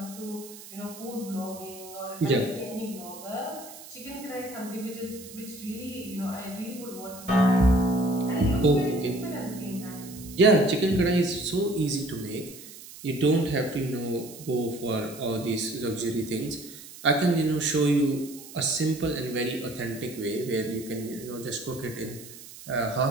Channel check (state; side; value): noise; right; hiss, 16 dB below the sound